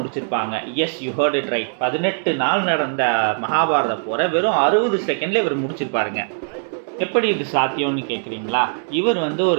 Yes, you heard it right. 18 நாள் நடந்த மகாபாரத போரை வெறும் 60 செகண்டில் இவர் முடிச்சிருப்பாருங்க. எப்படி இது சாத்தியம்னு கேட்குறீங்களா? இவர்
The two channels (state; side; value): silent; left; digital silence